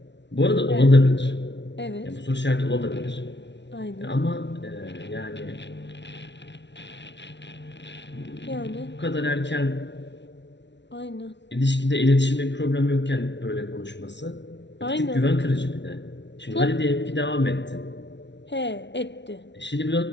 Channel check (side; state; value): right; late; 0.51 ms